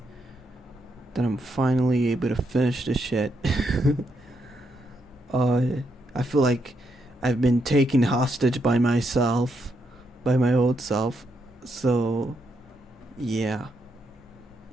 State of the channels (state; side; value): normal; both; correlation 0.79